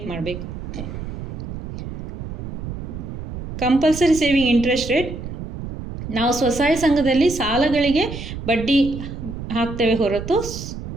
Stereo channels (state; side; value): noise; right; rumble, 9 dB below the sound